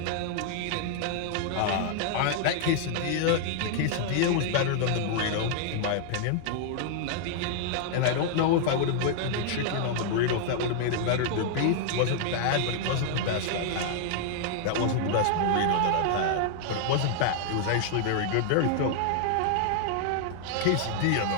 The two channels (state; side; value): different; both; correlation -0.01